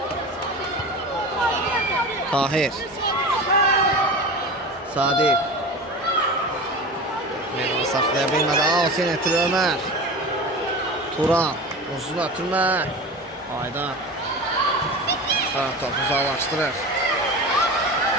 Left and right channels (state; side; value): normal; both; correlation 0.31